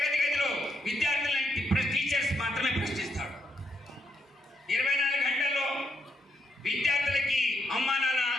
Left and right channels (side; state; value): both; normal; correlation 0.78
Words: గదిలో విద్యార్థులని టీచర్స్ మాత్రమే ప్రశ్నిస్తాడు. 24 గంటల్లో విద్యార్థులకి అమ్మా నాన్న